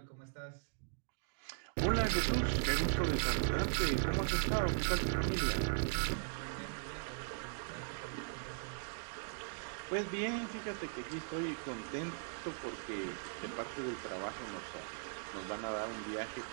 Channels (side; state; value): left; silent; digital silence